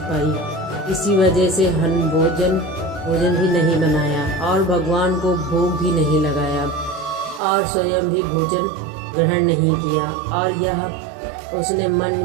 इसी वजह से भोजन भी नहीं बनाया और भगवान को भोग भी नहीं लगाया और स्वयं भी भोजन ग्रहण नहीं किया। और यह उसने मन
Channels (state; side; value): drops out; left; at 7.4 s